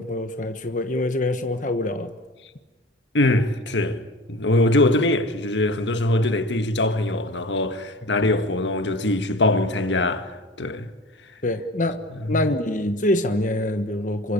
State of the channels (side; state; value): both; normal; correlation 0.38